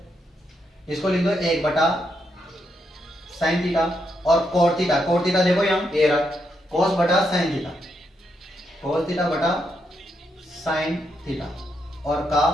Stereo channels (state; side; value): normal; both; correlation 0.80